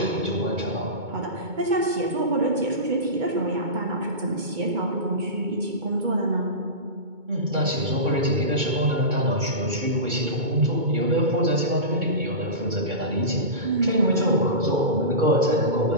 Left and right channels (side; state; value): left; late; 2.2 ms